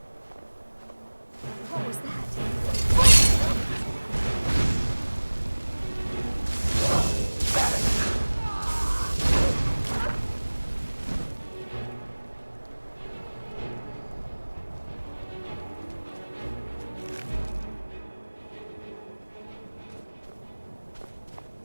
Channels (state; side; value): inverted; both; correlation -1.00